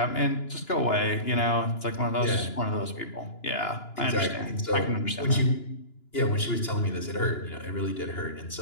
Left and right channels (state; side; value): late; right; 2.9 ms